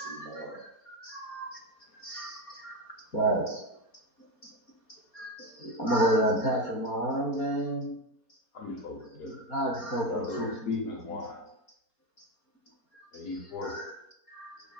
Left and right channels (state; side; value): late; right; 4.3 ms